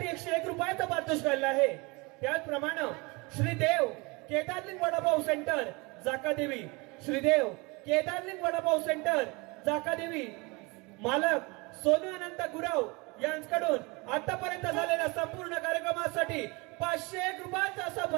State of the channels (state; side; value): quieter; left; 26.8 dB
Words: 101 रुपयाचा पारितोषिक आला आहे. त्याचप्रमाणे श्रीदेव केदारलिंग वडापाव सेंटर जाकादेवी, श्रीदेव केदारलिंग वडापाव सेंटर जाकादेवी मालक सोनू अनंत गुरव यांच्याकडून आतापर्यंत झालेल्या संपूर्ण कार्यक्रमासाठी 501 रुपयाचा असा